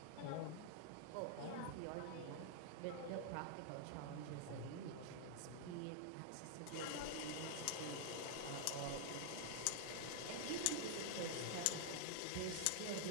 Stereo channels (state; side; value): different; both; correlation 0.00